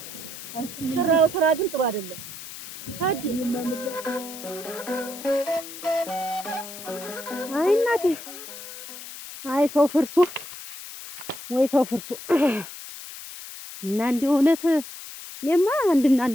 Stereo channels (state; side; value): noise; left; hiss, 12 dB below the sound